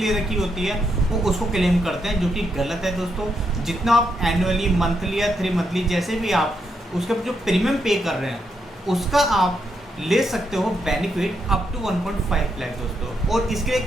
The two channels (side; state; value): both; normal; correlation 0.80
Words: रखी होती है वो उसको क्लेम करते हैं, जो कि गलत है दोस्तों। जितना आप एनुअली, मंथली या 3 मंथली जैसे भी आप उसके जो प्रीमियम पे कर रहे हैं उसका आप ले सकते हो बेनिफिट अप टू 1.5 लाख दोस्तों। और इसके एक